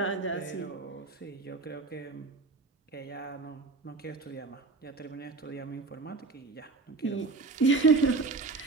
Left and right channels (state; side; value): quieter; left; 3.8 dB